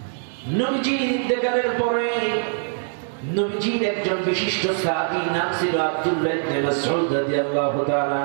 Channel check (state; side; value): silent; left; digital silence